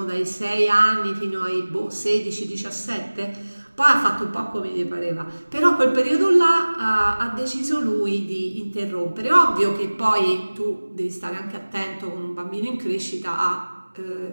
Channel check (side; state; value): both; inverted; correlation -1.00